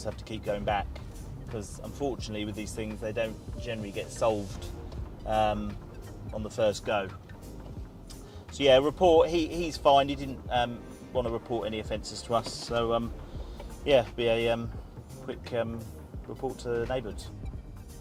have to keep going back, because unfortunately with these things they don't generally get solved on the first go. So yeah, report. He's fine. He didn't want to report any offences to us. So yeah, be a quick report to neighbours.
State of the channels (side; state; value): both; identical; correlation 1.00